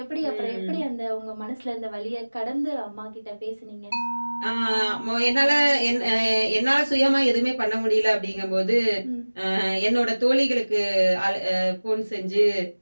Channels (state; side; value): inverted; both; correlation -1.00